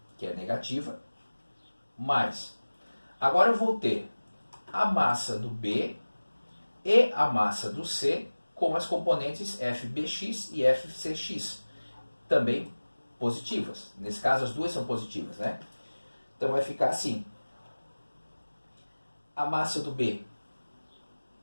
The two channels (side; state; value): both; inverted; correlation -1.00